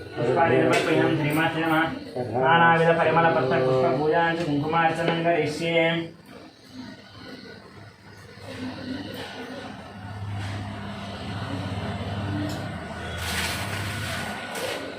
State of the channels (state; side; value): identical; both; correlation 1.00